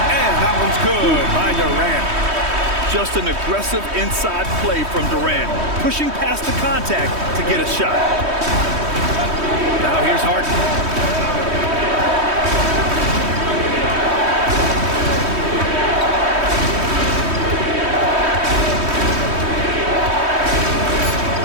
And that one's good by Durant. Just an aggressive inside play from Durant, pushing past the contact to get a shot. Now here's Harden.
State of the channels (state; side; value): late; left; 3.2 ms